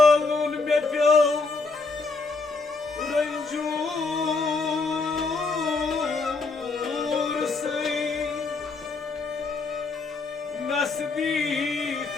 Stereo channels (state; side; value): quieter; right; 4.0 dB